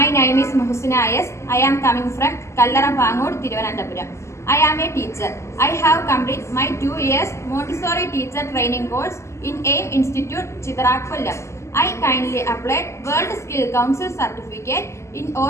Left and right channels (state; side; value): late; right; 0.13 ms